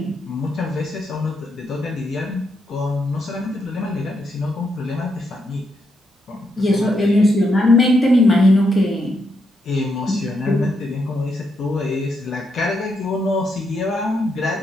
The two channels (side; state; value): both; normal; correlation 0.80